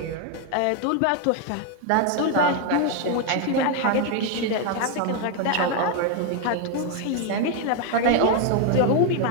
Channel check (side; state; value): both; different; correlation 0.01